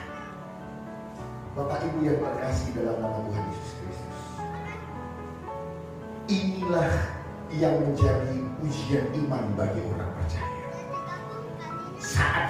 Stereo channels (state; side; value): identical; both; correlation 1.00